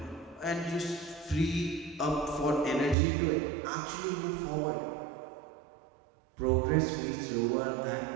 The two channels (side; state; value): left; drops out; at 3.0 s